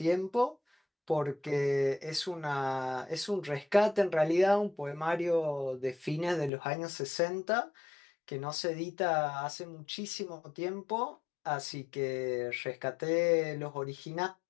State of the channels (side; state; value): right; drops out; at 6.5 s